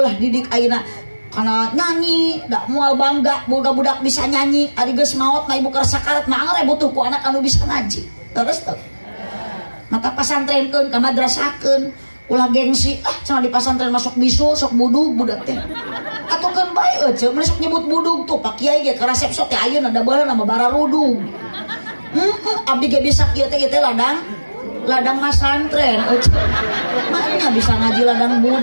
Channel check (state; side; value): inverted; both; correlation -1.00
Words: didik ayeuna kana nyanyi dak moal bangga boga budak bisa nyanyi ari geus maot mah ibu keur sakarat mah anggar butuh ku anak anu bisa ngaji terus teh mata pasantrenkeun ka madrasahkeun ulah gengsi cenah di pasantren masuk bisul sok budu budak teh atuh keun bae eueuh masuk nyebut budug tuh Pak Kiai ge ka resep sok teh ayeuna da baheula nama bararudug. Abdi ge bisa kieu teh ladang masantren eueuh. Mana bisa ngaji ladang